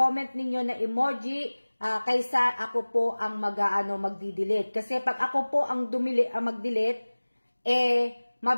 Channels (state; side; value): inverted; both; correlation -1.00